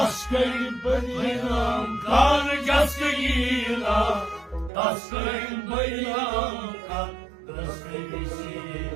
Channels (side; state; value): left; drops out; at 4.7 s